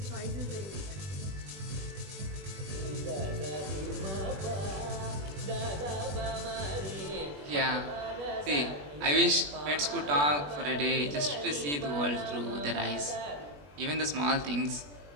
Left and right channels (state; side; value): late; left; 21 ms